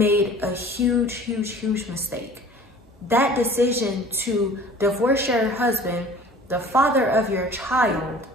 a huge, huge, huge mistake. That decision to divorce your husband, the father of your child,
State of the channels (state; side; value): normal; both; correlation 0.46